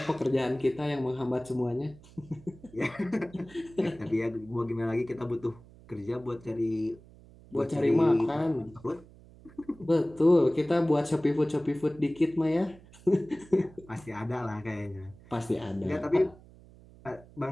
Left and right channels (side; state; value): right; noise; hum, 22 dB below the sound